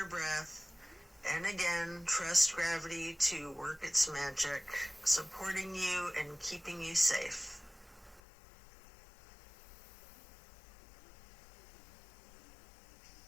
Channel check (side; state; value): right; drops out; at 8.2 s